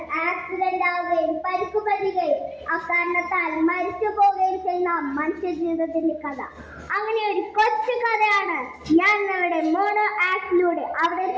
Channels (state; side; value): identical; both; correlation 1.00